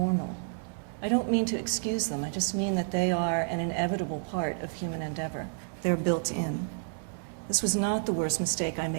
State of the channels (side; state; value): left; silent; digital silence